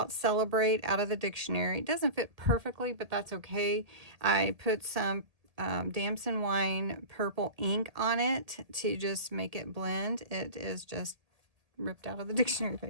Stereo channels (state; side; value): late; left; 1.8 ms